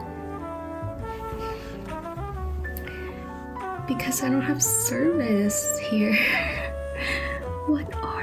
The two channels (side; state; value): both; identical; correlation 1.00